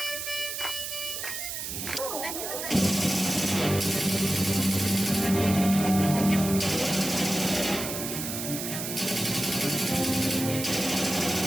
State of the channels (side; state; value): right; noise; hiss, 5 dB below the sound